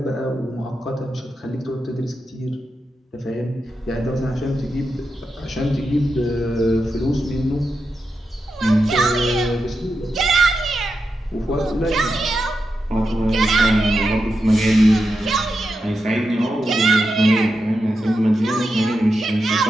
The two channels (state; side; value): normal; both; correlation 0.88